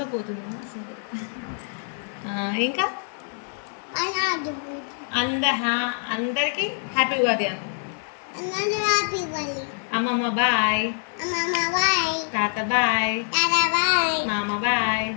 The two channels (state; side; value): silent; right; 62 dB below the other